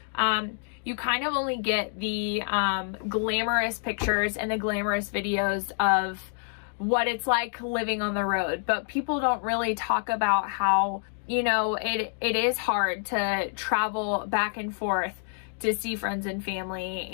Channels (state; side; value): silent; right; 60 dB below the other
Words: You kind of only get the glamorous pictures and the glamorous videos of what it's like living on the road, but people don't really talk about how, it is hard to travel back and forth to see friends and family.